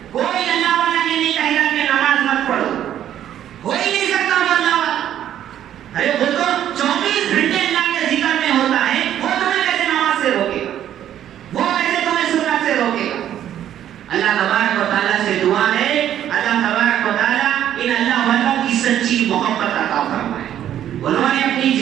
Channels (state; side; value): quieter; left; 10.9 dB